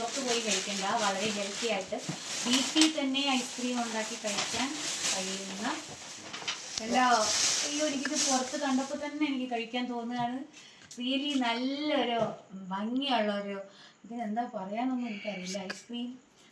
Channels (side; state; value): both; identical; correlation 1.00